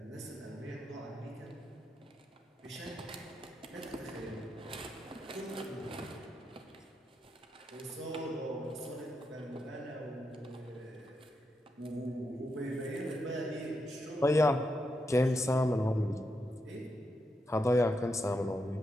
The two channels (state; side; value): normal; both; correlation 0.84